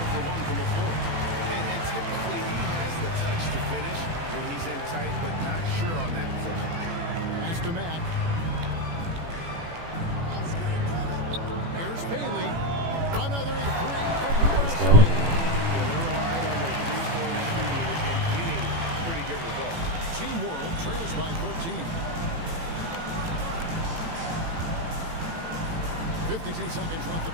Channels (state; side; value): late; left; 18 ms